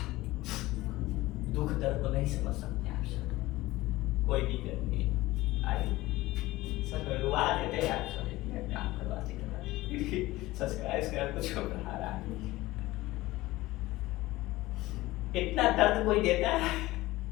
दुख दर्द को नहीं समझ सकते आप सब, कोई दिक्कत नहीं। आइए सब रुआ देते हैं आप सब, काम करवाते सब्सक्राइब कर कुछ बढ़ा रहा है। इतना दर्द कोई देता है,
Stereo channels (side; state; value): right; quieter; 18.5 dB